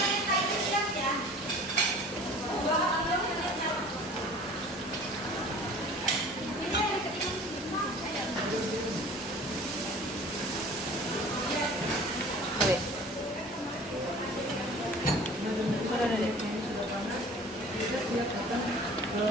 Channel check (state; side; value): normal; both; correlation 0.45